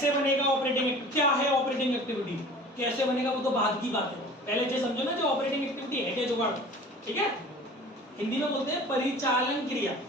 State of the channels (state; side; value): normal; both; correlation 0.43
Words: बनेगा ऑपरेटिंग, क्या है ऑपरेटिंग एक्टिविटी, कैसे बनेगा वो तो बाद की बात है। पहले ये समझो ना जो ऑपरेटिंग एक्टिविटी है क्या जुगाड़, ठीक है। हिंदी में बोलते हैं परिचालन क्रिया।